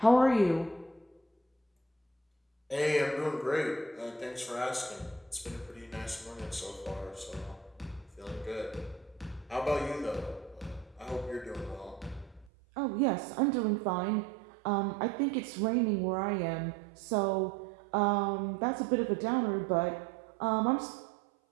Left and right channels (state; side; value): drops out; left; at 12.5 s